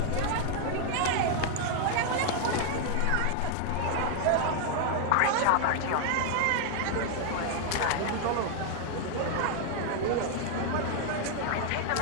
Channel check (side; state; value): both; different; correlation 0.00